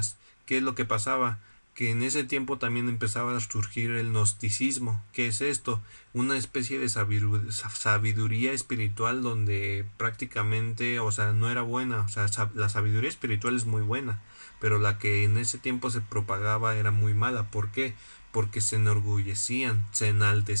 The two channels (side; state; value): both; inverted; correlation -1.00